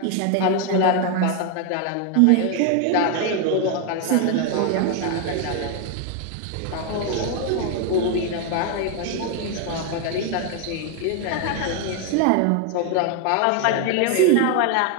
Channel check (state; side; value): different; both; correlation 0.01